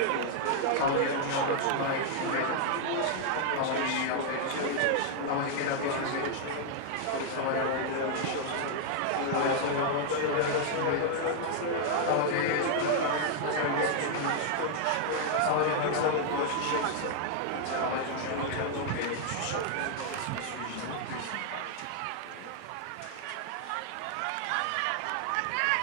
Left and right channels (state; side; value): different; both; correlation 0.00